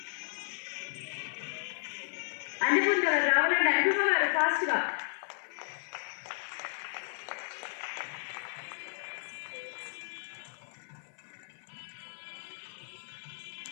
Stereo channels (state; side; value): silent; right; 55 dB below the other